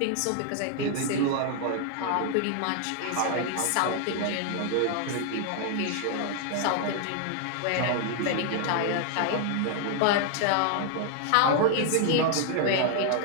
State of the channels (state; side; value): different; both; correlation 0.00